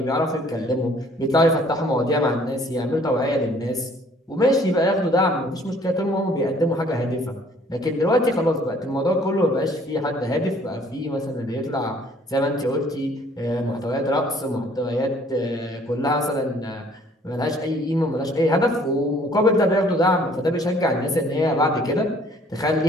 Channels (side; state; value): both; normal; correlation 0.58